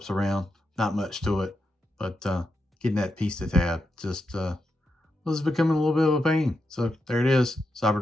around. Not much to it, but getting that piece to tab just was becoming a little bit of a pain. So there it is,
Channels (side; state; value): both; normal; correlation 0.86